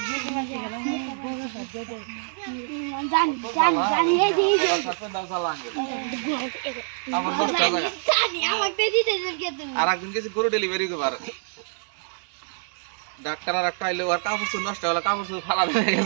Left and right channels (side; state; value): left; silent; 60 dB below the other